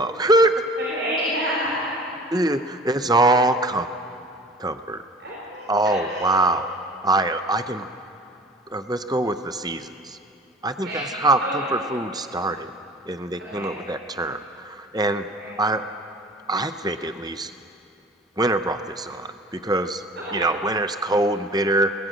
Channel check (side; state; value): both; normal; correlation 0.44